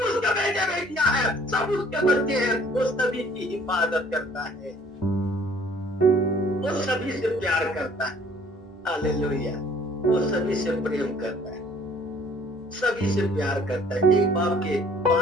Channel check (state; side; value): normal; both; correlation 0.56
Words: उसके बेटे बेटियां हैं, सब उसके बच्चे हैं, वो सभी की हिफाजत करता है, वो सभी से प्यार करता है। हालेलुया। वो सभी से प्रेम करता है, सभी से प्यार करता है। एक बाप के